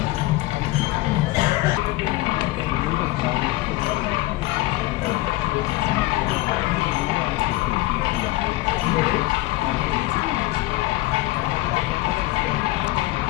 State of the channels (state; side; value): quieter; right; 18.7 dB